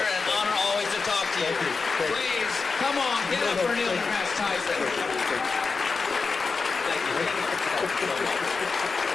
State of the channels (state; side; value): quieter; right; 4.6 dB